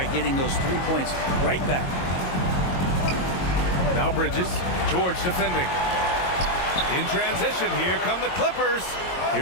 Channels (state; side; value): late; right; 22 ms